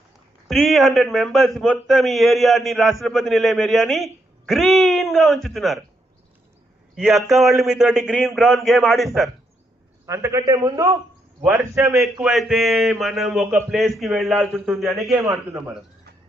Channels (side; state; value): both; normal; correlation 0.78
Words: 300 మెంబర్స్ మొత్తం ఈ ఏరియాని, రాష్ట్రపతి నిలయం ఏరియాని గ్రీన్ గా ఉంచుతున్నారు. ఈ అక్క వాళ్ళు మీతోటి గ్రీన్ గ్రౌండ్ గేమ్ ఆడిస్తారు. అంతకంటే ముందు వర్షం ఎక్కువైతే మనం ఒక ప్లేస్ కి వెళ్లాల్సి ఉంటుంది అనే గేమ్ ఆడుతున్నాం మనం.